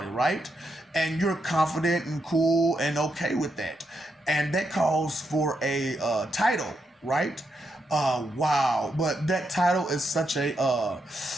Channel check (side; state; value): both; normal; correlation 0.82